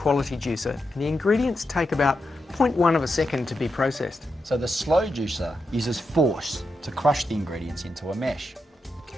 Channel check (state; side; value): normal; both; correlation 0.86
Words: juicer, and the ingredients take about 0.1 of a second to be processed. So the slow juicer uses force to crush the ingredients into a mesh.